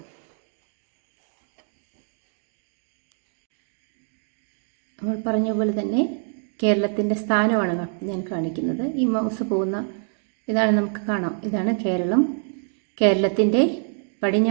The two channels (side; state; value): left; silent; 56 dB below the other